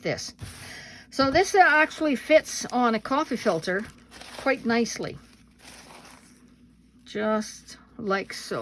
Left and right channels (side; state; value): both; identical; correlation 1.00